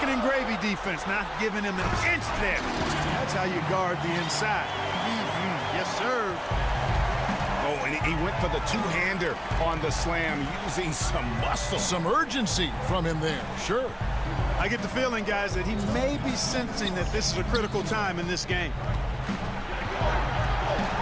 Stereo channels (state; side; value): identical; both; correlation 1.00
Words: and gravy defense, not giving him an inch there. That's how you guard the inside. Yes, sir. Oh, and he went for the two-hander on the slam, using some muscle. Some urgency from him there, sure. I get the feeling, guys, that he may be sensing that this is a critical time in this game.